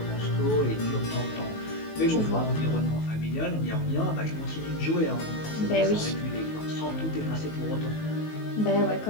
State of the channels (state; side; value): late; right; 19 ms